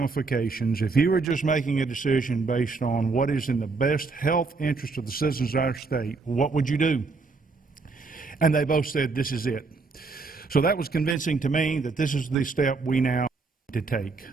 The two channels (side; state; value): left; quieter; 4.1 dB